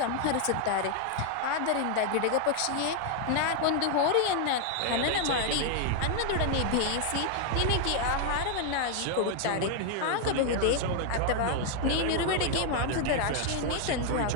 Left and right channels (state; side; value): different; both; correlation 0.00